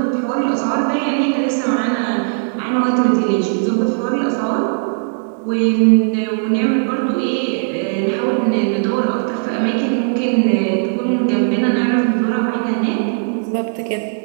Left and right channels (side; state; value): left; silent; 68 dB below the other